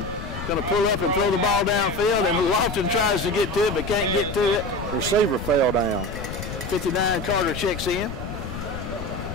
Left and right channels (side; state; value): left; noise; rumble, 8 dB below the sound